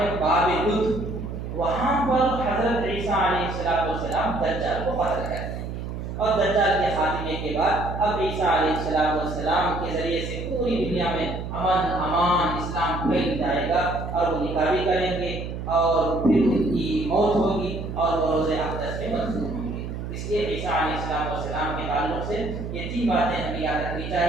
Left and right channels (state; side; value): noise; right; hum, 6 dB below the sound